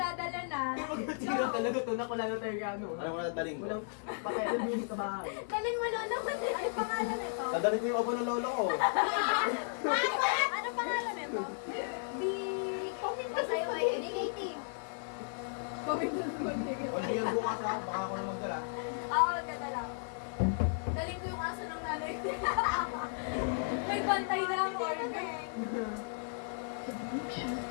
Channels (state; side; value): silent; right; digital silence